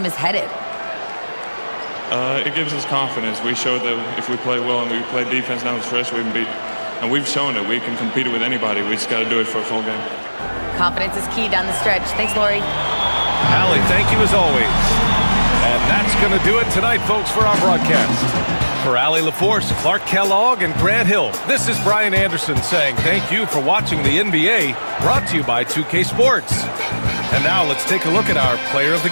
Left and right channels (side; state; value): both; inverted; correlation -1.00